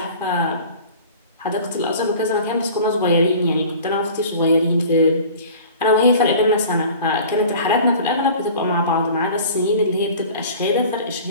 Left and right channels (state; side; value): inverted; both; correlation -0.43